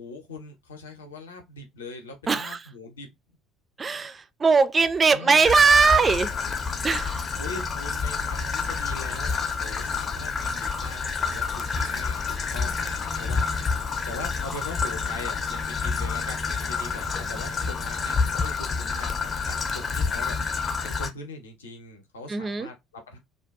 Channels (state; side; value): normal; both; correlation 0.78